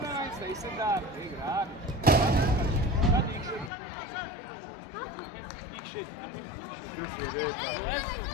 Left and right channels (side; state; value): right; drops out; at 3.7 s